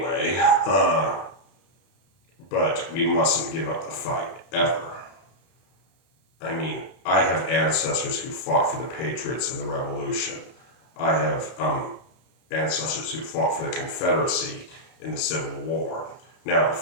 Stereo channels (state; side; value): late; right; 31 ms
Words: but we mustn't give up the fight, ever. I mean, I have ancestors who fought for the Patriots in the Revolution. I have ancestors who fought for the Confederacy in the Civil War. Now,